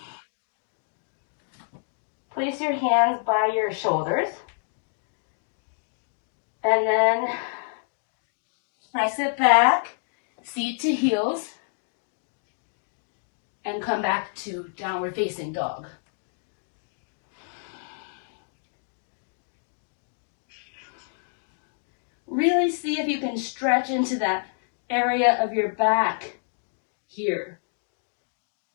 Place your hands by your shoulders. And then press it back, seat to heels, and come back to downward facing dog. Really see if you can stretch into that area of your back here.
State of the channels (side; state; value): right; silent; digital silence